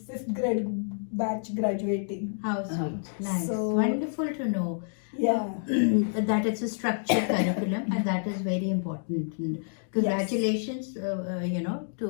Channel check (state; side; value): silent; right; digital silence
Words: 5th grade batch graduating. How sweet. Nice. So- Wonderful to know. Yeah. That it's a structured curriculum, and that is very important. And congratulations,